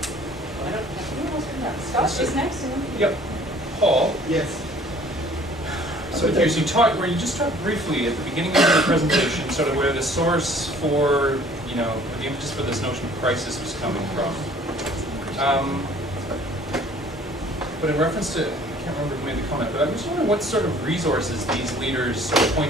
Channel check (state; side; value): normal; both; correlation 0.53